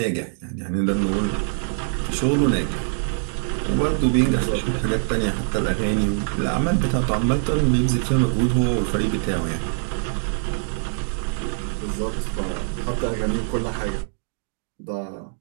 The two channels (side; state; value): left; silent; digital silence